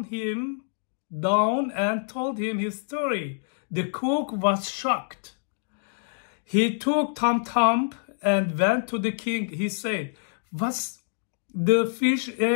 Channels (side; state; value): right; silent; digital silence